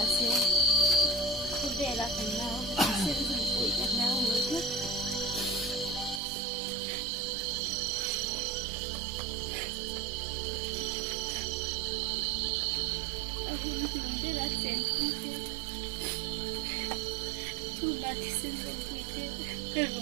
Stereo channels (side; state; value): left; drops out; at 6.2 s